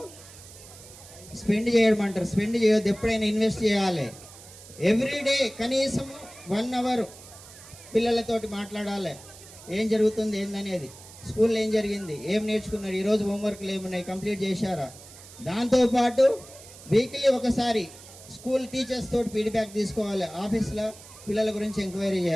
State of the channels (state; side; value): noise; right; hiss, 18 dB below the sound